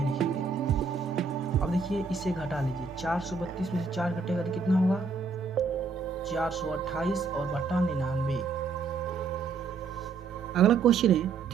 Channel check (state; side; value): quieter; left; 4.7 dB